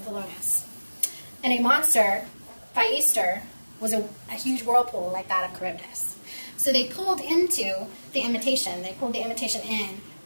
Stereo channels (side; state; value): both; inverted; correlation -1.00